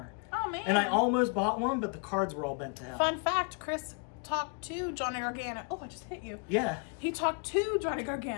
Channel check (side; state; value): right; quieter; 36.6 dB